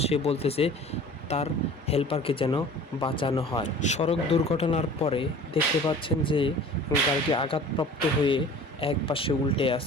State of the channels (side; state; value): both; normal; correlation 0.44